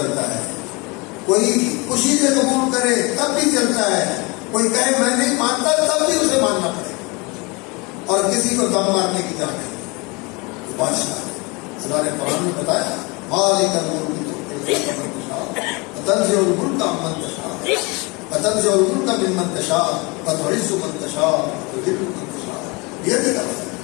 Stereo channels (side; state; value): right; quieter; 27.4 dB